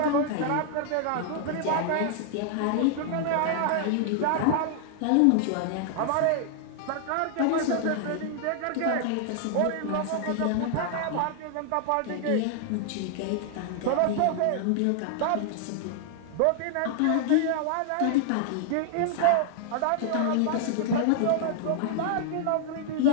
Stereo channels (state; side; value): different; both; correlation -0.01